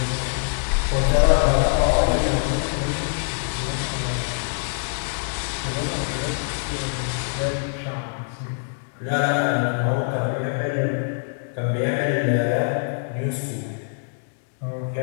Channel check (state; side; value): silent; right; digital silence